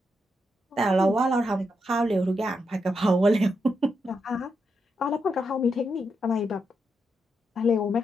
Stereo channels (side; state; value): both; normal; correlation 0.83